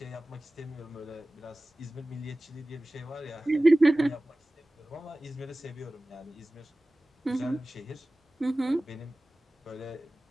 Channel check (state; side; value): normal; both; correlation 0.97